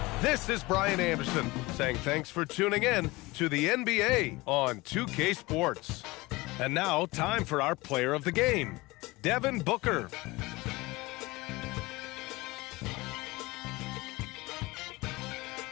this is Brian Anderson saying thanks for tuning in to the NBA on 2K Sports. And now, time for our player of the game, Devin Booker.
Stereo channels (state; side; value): quieter; right; 21.9 dB